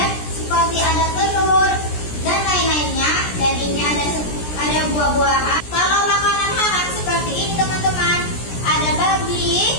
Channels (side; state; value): right; late; 17 ms